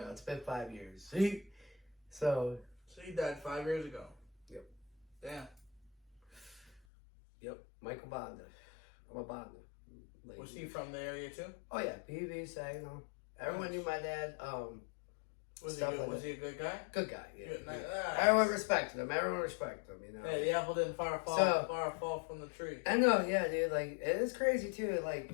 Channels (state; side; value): drops out; right; at 6.8 s